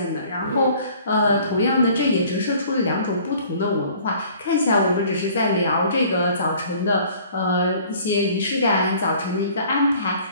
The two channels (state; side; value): inverted; both; correlation -0.53